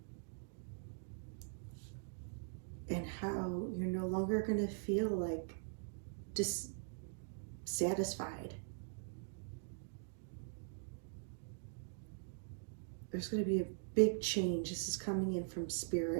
you're no longer going to feel like dissatisfied. There's going to be a big change. This is coming in from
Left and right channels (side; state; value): left; silent; digital silence